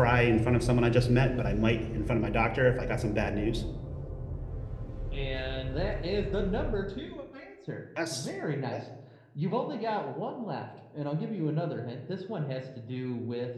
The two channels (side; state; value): both; identical; correlation 1.00